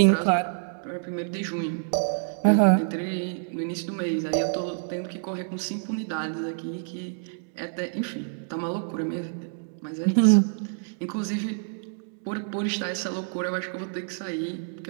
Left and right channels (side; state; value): left; silent; digital silence